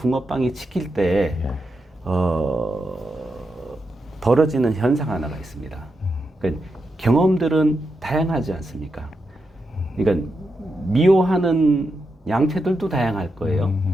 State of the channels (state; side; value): normal; both; correlation 0.86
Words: 치킬 때 벌어지는 현상 하나가 있습니다. 그러니까 경험들은 다양하지 않습니까? 그러니까 미워하는 양태들도 다양할 거예요.